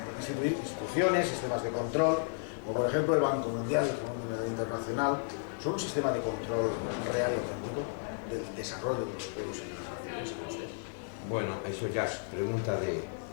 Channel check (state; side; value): silent; right; digital silence